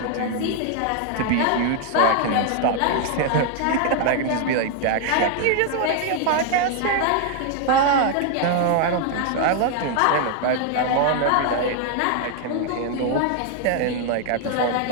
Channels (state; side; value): different; both; correlation 0.00